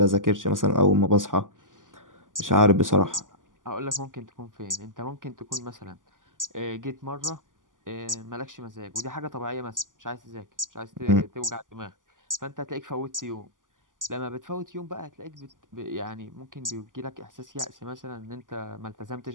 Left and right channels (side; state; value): left; late; 0.88 ms